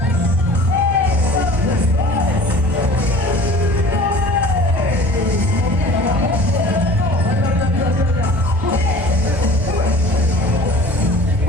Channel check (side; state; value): both; normal; correlation 0.44